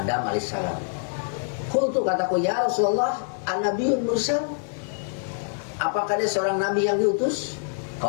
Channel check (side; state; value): right; silent; digital silence